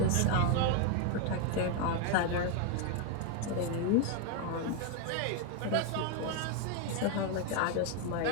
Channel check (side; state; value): both; different; correlation 0.01